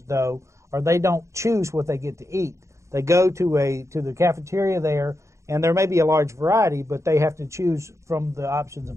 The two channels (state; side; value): late; left; 0.14 ms